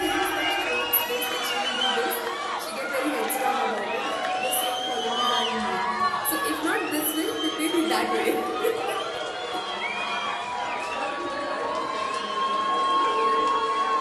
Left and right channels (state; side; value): identical; both; correlation 1.00